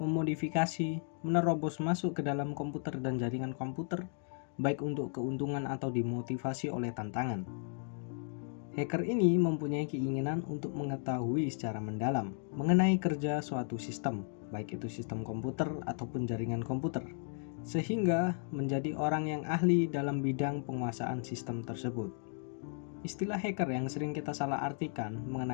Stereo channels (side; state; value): right; silent; 55 dB below the other